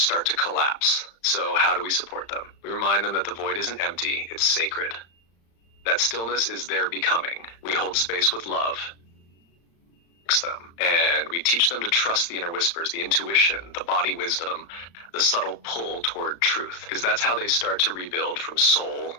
to collapse. So how do we support them? We remind them that the void isn't empty, it's sacred. That stillness is their becoming. We hold space with love, them, and we teach them to trust the inner whispers, the intuition, the body wisdom, the subtle pull toward truth, because that's how they start to rebuild from soul,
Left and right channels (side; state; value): right; late; 35 ms